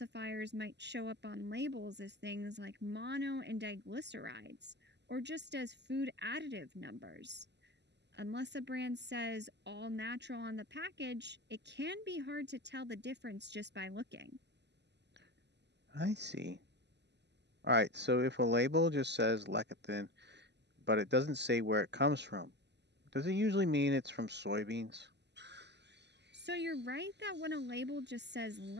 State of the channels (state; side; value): late; left; 0.50 ms